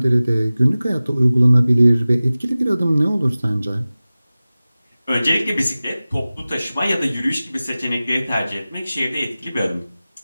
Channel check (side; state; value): both; inverted; correlation -0.97